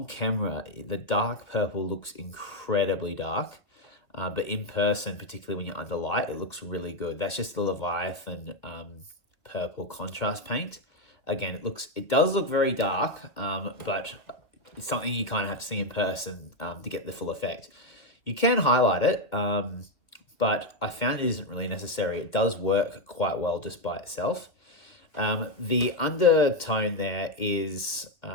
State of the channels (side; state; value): right; late; 2.0 ms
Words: camera, the dark purple looks incredibly dark, but in person, particularly when you're under light, it looks really good. That's just the Leviathan purple contrast paint. Again, it does look very dark, but it's something you kind of have to see in person to get the full effect. You can highlight it, but I found it isn't really necessary. It does work quite well just by itself. The undertone there is